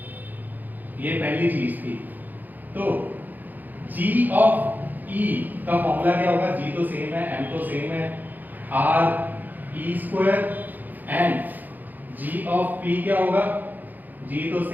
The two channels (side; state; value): left; late; 0.085 ms